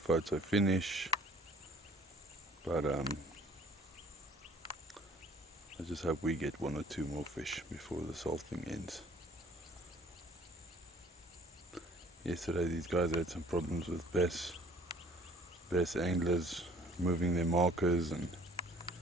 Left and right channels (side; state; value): both; normal; correlation 0.54